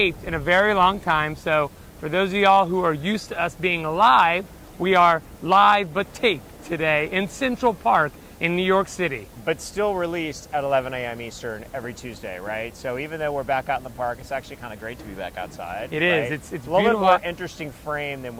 in a very long time, so for those of y'all who are used to us being live, we are live but taped today in Central Park in New York City. But still released at 11 a.m. Eastern every Tuesday, right? So even though we're back out in the park, it's actually kind of great to be back outside. It right? is. It's a little beautiful. bit more interesting frame than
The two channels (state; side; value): identical; both; correlation 1.00